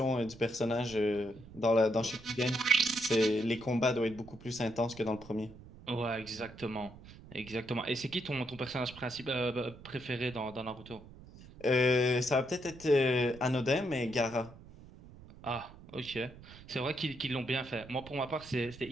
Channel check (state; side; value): noise; right; rumble, 19 dB below the sound